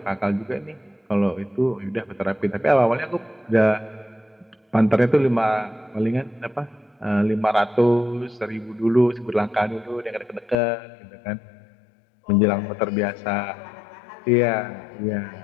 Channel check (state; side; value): drops out; right; at 10.6 s